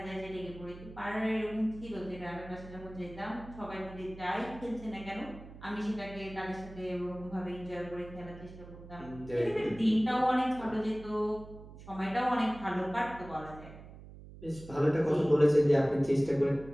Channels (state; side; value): noise; right; hum, 16 dB below the sound